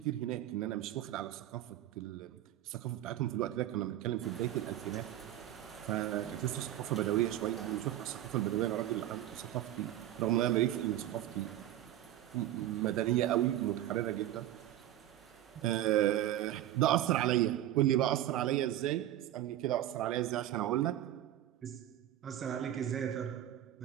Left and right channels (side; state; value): left; quieter; 12.9 dB